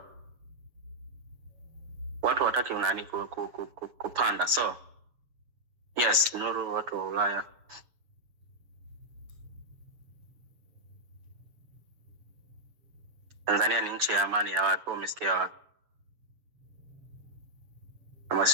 watu wataki unani kupanda. So yes, Nuru, watu wa Ulaya Tanzania ni nchi ya amani ya watu, umesikia wapi? Kama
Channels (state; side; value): late; left; 7.0 ms